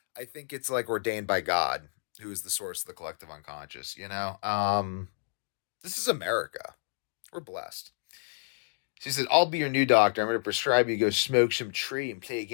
I think it's like ordained by God, who is the source of the collective unconscious, you know? This is America. We're blessed. She said, I'll be your new doctor. I'm going to prescribe you to go smoke some tree and play a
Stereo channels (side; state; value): right; silent; digital silence